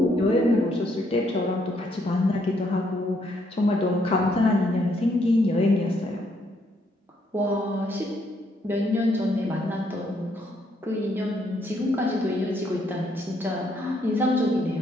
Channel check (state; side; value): normal; both; correlation 0.72